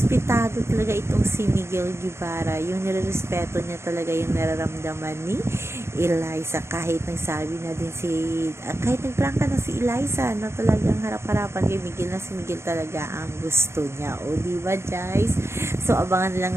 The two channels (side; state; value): left; late; 0.13 ms